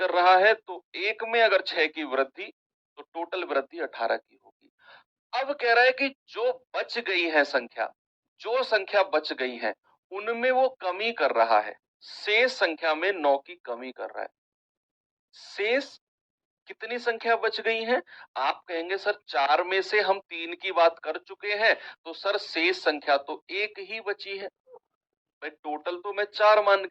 रहा है, तो एक में अगर 6 की वृद्धि तो टोटल वृद्धि 18 की होगी। अब कह रहा है कि जो बच गई है संख्या, जो संख्या बच गई है उनमें वो कमी कर रहा है, शेष संख्या में 9 की कमी कर रहा है। शेष कितनी संख्या बच गई है? आप कहेंगे सर 4 में से हम 3 की बात कर चुके हैं, तो सर शेष संख्या तो एक ही बची है। भाई टोटल तो मैं 4 मान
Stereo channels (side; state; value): both; identical; correlation 1.00